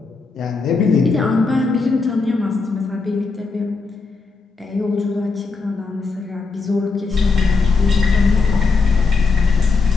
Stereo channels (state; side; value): quieter; right; 4.3 dB